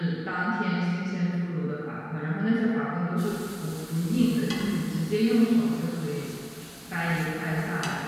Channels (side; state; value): both; identical; correlation 1.00